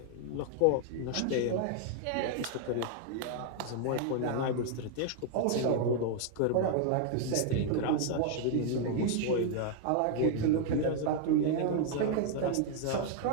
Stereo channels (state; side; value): different; both; correlation 0.00